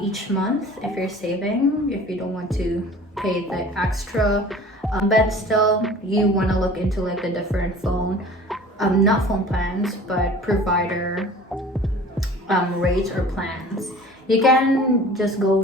month if you're saving, if you don't want to pay the extra. But still, you want to look into like the different phone, not phone plans, but provider rates or plans. You can just go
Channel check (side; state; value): both; normal; correlation 0.44